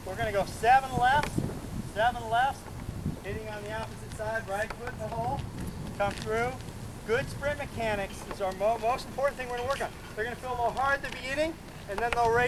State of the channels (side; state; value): both; identical; correlation 1.00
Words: we're gonna go 7 left, hitting on the opposite side, right foot in the hole, come through. Good sprint mechanics is our most important thing we're gonna work on. They're gonna feel a little hard at the beginning, and then they'll